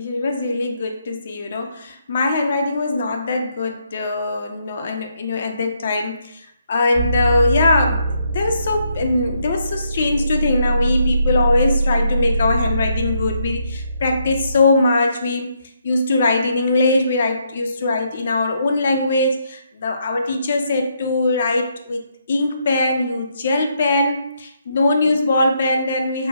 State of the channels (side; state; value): both; inverted; correlation -0.76